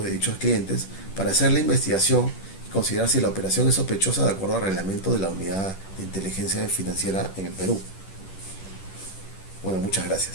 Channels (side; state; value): right; late; 10 ms